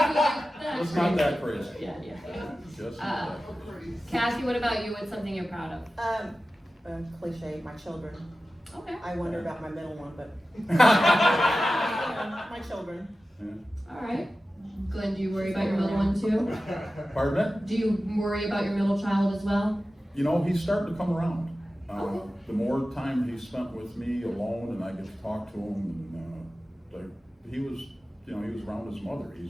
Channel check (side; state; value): both; normal; correlation 0.94